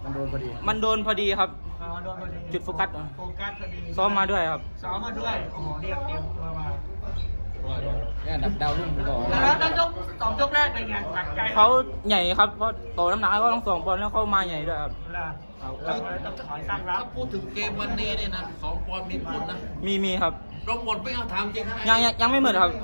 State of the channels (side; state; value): both; inverted; correlation -1.00